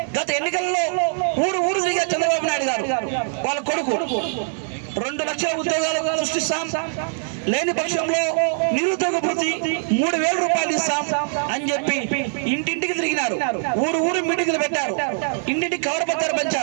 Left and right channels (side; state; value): left; silent; digital silence